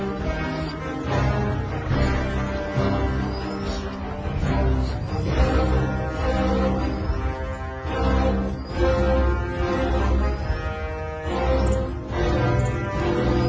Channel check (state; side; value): identical; both; correlation 1.00